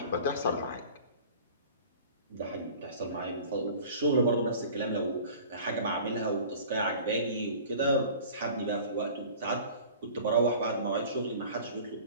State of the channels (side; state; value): both; inverted; correlation -0.43